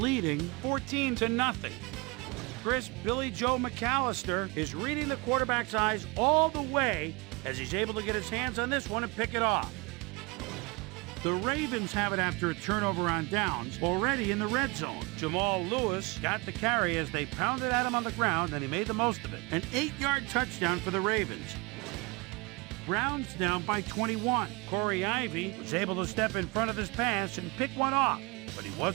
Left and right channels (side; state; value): left; quieter; 27.4 dB